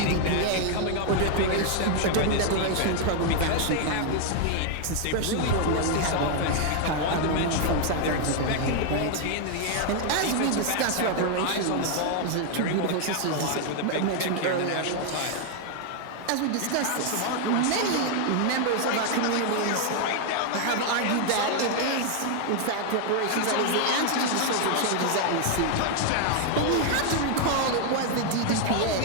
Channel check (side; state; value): both; different; correlation 0.00